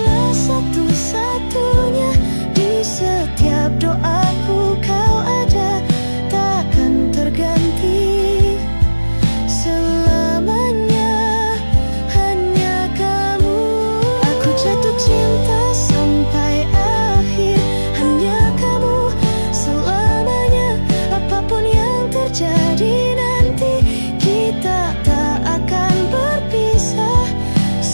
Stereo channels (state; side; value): inverted; both; correlation -1.00